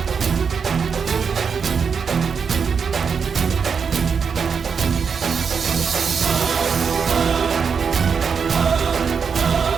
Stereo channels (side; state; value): left; quieter; 6.1 dB